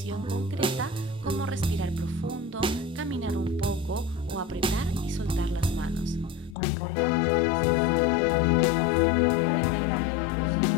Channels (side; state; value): right; drops out; at 6.6 s